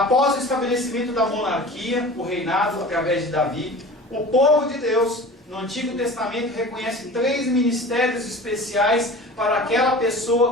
o estabelecimento da monarquia, o reinado através de Davi, o povo de Deus no Antigo Testamento reconhece 3 ministérios especiais para aquela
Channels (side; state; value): both; normal; correlation 0.39